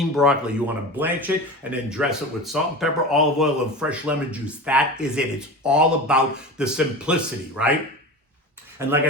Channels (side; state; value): both; normal; correlation 0.30